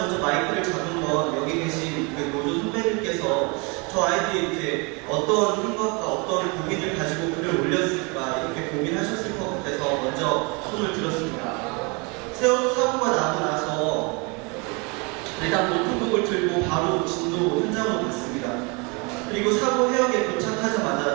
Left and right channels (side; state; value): left; quieter; 30.4 dB